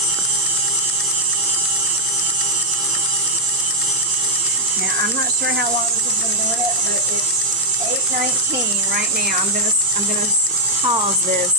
Now, I'm not sure how long this has been doing it, but it's 8:19 right now. I'm gonna pause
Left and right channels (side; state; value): both; normal; correlation -0.05